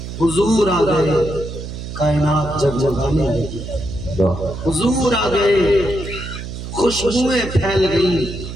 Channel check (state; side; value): noise; right; hum, 9 dB below the sound